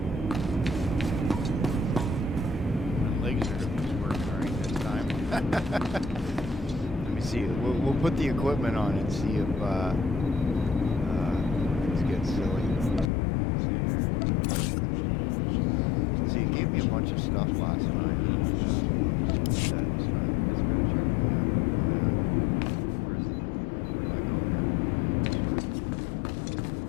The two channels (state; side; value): drops out; right; at 13.1 s